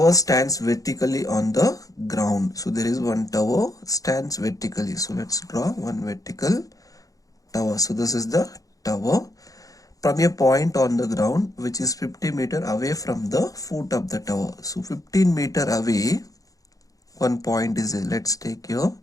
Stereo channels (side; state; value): right; late; 0.17 ms